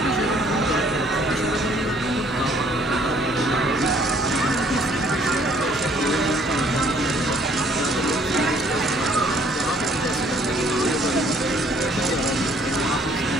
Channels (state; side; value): normal; both; correlation 0.61